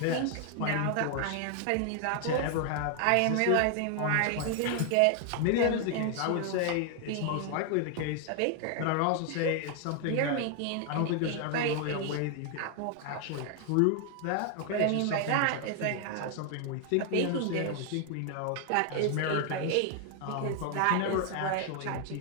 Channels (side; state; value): both; different; correlation 0.00